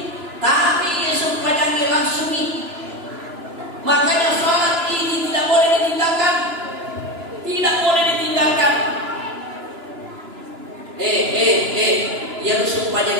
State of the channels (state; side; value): late; left; 2.9 ms